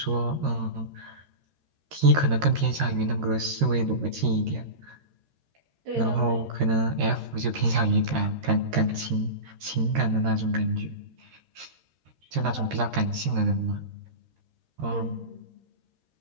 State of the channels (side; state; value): left; late; 13 ms